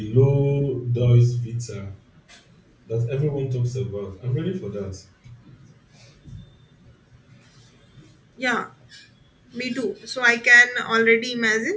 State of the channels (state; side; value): identical; both; correlation 1.00